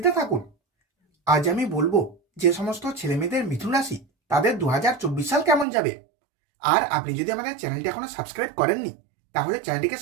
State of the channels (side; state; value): left; drops out; at 5.7 s